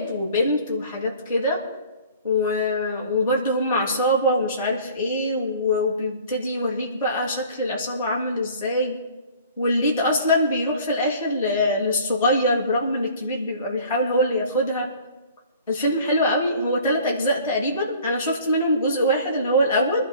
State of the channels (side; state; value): both; inverted; correlation -0.49